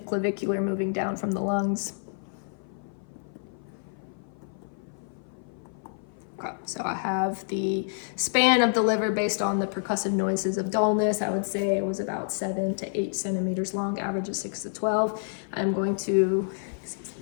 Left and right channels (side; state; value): right; silent; 55 dB below the other